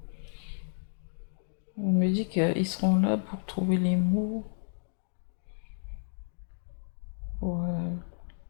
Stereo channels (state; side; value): silent; right; digital silence